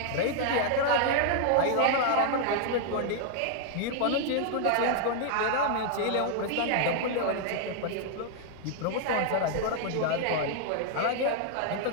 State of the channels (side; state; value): both; different; correlation 0.00